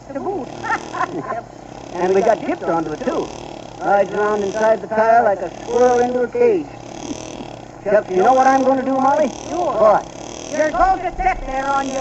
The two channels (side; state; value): both; identical; correlation 1.00